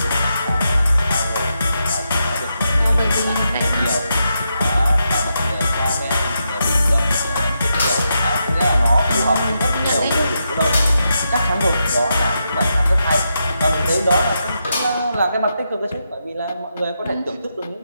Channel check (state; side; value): inverted; both; correlation -0.84